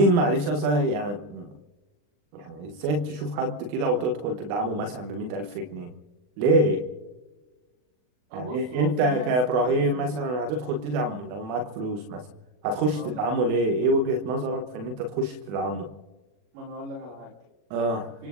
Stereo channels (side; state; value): left; late; 40 ms